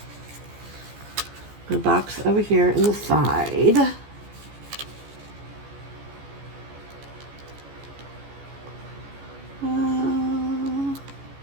my box over here in the side.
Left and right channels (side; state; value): left; late; 14 ms